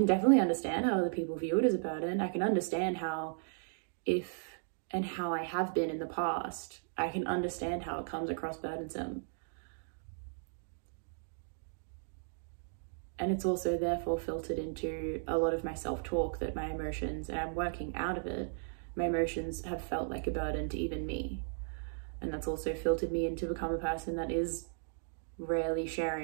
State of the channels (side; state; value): left; silent; digital silence